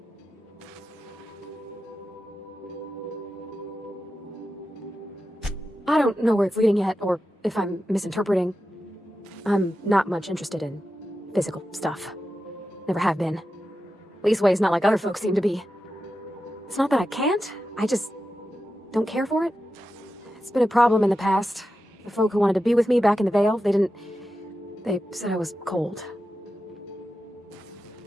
I don't know where it's leading yet, or if I'm misinterpreting. I'm not much interested in physical stuff. Never have been. Leastways, not like other folks seem to be. It's not that I can't, I just don't care for it. It's been a problem in the past. The folk who wanted to be with me back in the Vale, they said I was cold.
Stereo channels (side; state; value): both; normal; correlation 0.91